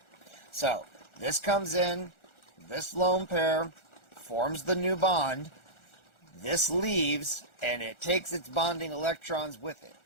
So, this comes in, this lone pair forms the new bond, this leaves, and it takes its bonding electrons with it.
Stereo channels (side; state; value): right; late; 1.4 ms